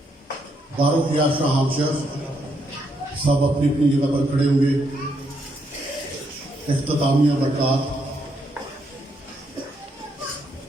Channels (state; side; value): normal; both; correlation 0.76